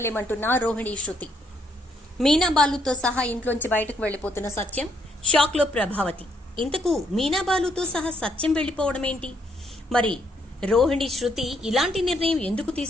రోహిణి శృతి. మీనా బాలుతో సహా ఇంట్లోంచి బయటకు వెళ్ళిపోతున్న సత్యం, షాక్లో ప్రభావతి. ఇంతకు మీనా బాలుతో సహా సత్యం వెళ్ళిపోవడం ఏంటి? మరి రోహిణి శృతి ఇలాంటి నిర్ణయం ఎందుకు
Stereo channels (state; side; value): normal; both; correlation 0.72